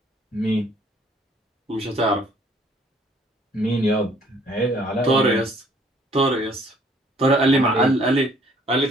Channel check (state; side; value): normal; both; correlation 0.60